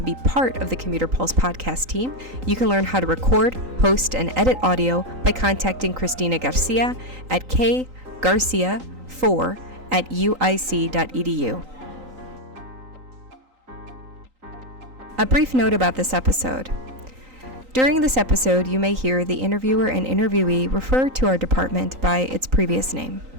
be part of the Commuter Pulse podcast team, you can learn how to record, host, and edit audio by contacting Christina Garcia at kgarcia4@uic.edu. A brief note about this episode. During this episode, you may hear the interviewer and interviewee refer to our department by its previous name.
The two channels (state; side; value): late; left; 3.9 ms